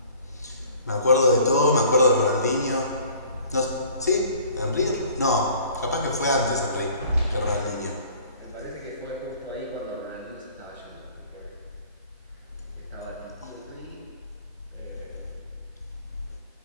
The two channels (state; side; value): inverted; both; correlation -0.51